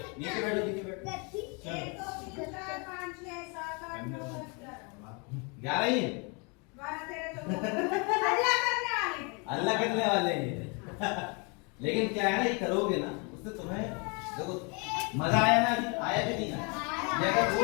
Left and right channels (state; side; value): quieter; right; 32.8 dB